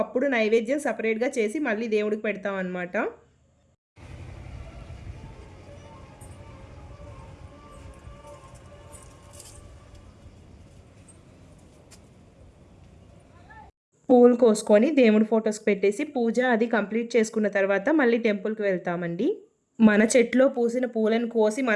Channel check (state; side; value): identical; both; correlation 1.00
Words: అప్పుడు నైవేద్యం సపరేట్గా చేసి మళ్ళీ దేవుడికి పెడతాం అన్నమాట. పూలు కోసుకొని దేవుడి ఫొటోస్కి పెట్టేసి పూజ అది కంప్లీట్ చేసుకున్న తర్వాత మళ్ళీ టెంపుల్కి వెళ్తామండి. మన చెట్లో పూసిన పూలను కోసి